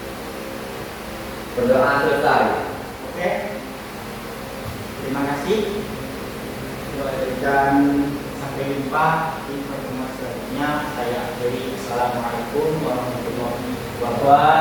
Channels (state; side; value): identical; both; correlation 1.00